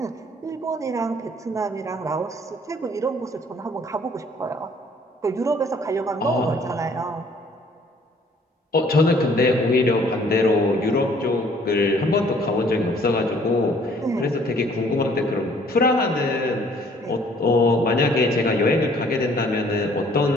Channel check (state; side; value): normal; both; correlation 0.58